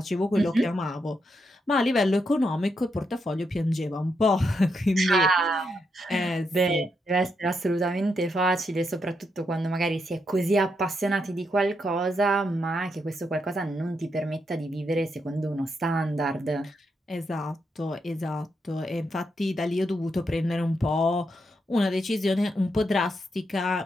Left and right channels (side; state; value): both; normal; correlation 0.81